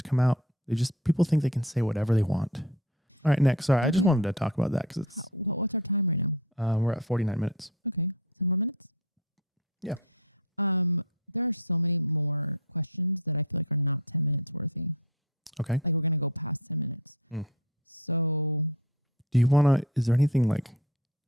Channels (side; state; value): both; normal; correlation 0.32